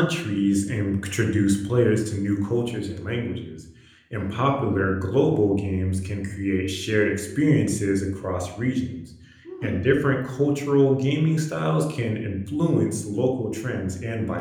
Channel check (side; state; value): both; identical; correlation 1.00